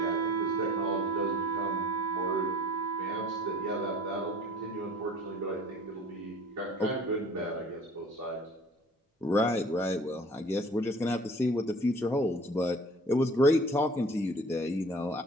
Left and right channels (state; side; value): normal; both; correlation 0.48